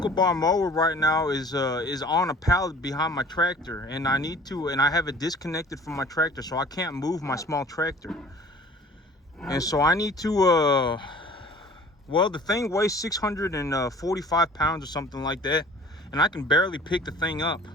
bar mower right now is on a pallet behind my tractor, and I have it disconnected from my tractor, so I can't move my small tractor. And so I need to well, the thing weighs 645 pounds or something like that, and I can barely pick the thing up.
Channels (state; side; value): normal; both; correlation 0.48